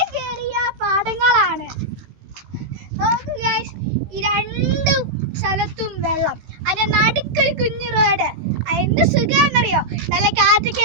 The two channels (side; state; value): left; late; 16 ms